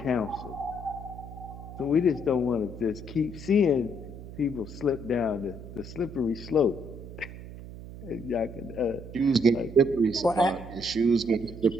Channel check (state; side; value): noise; right; hum, 13 dB below the sound